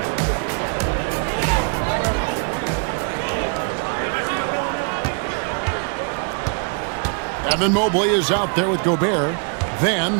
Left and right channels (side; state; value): left; quieter; 39.0 dB